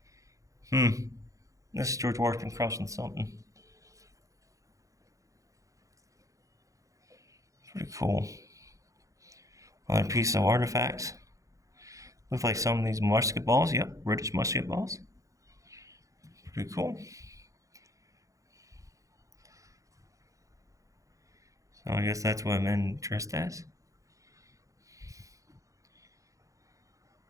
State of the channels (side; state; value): left; late; 0.16 ms